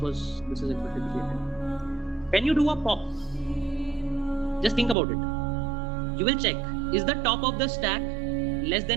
is expected to be a 10. When you do a pop, just think about it. You will check, is the top of the stack less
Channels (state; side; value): drops out; left; at 5.0 s